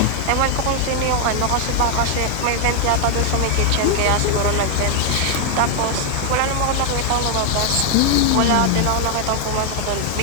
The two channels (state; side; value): different; both; correlation 0.00